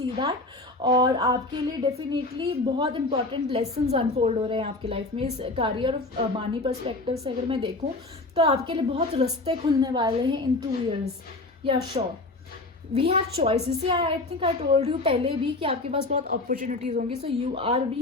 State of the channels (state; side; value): quieter; right; 3.0 dB